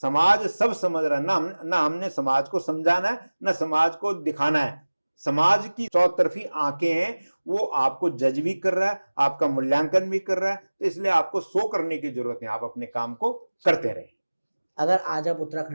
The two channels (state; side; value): inverted; both; correlation -1.00